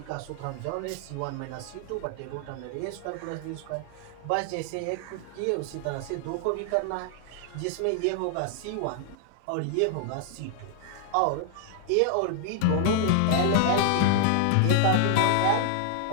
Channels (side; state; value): both; different; correlation 0.00